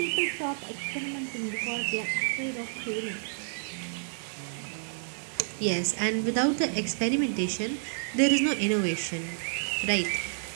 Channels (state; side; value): silent; left; digital silence